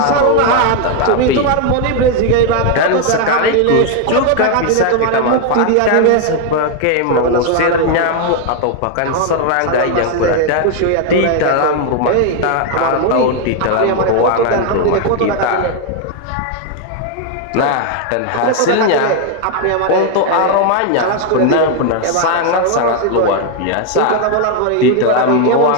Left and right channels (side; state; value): both; different; correlation 0.00